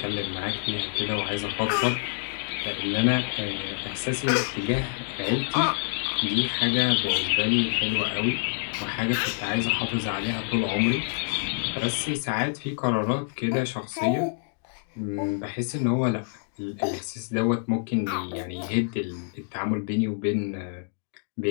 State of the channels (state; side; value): silent; right; digital silence